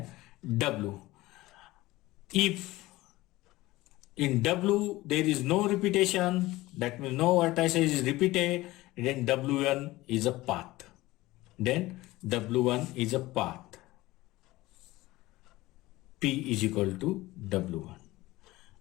W. If in W there is no repetition, that means no vertices is repeated, then W1 is a path. Then W1 is a path. P is equal to W1.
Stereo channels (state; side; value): quieter; right; 18.7 dB